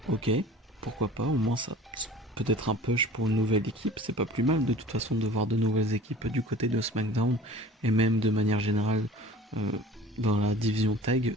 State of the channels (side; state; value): both; normal; correlation 0.44